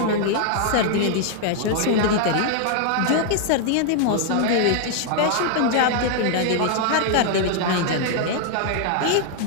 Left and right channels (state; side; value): different; both; correlation 0.00